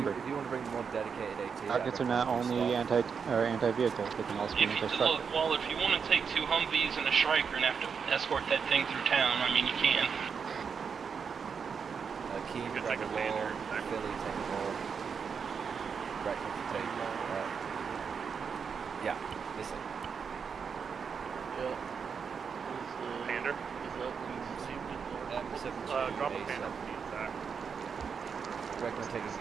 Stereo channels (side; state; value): left; quieter; 6.2 dB